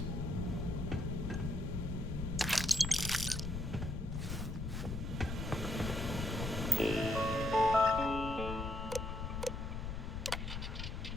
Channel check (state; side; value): noise; left; rumble, 4 dB below the sound